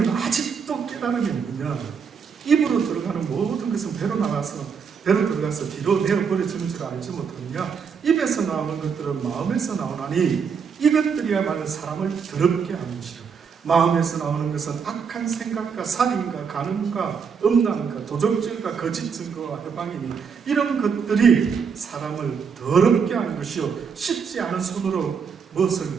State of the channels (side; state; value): left; quieter; 6.3 dB